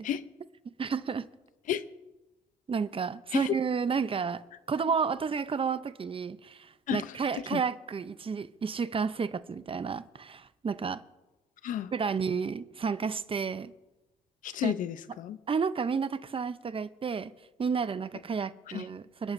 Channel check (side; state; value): left; quieter; 3.3 dB